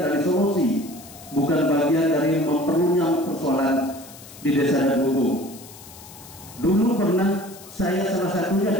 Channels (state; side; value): noise; left; hiss, 19 dB below the sound